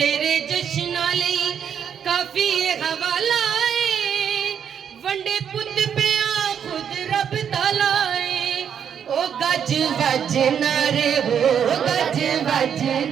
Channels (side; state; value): left; quieter; 8.1 dB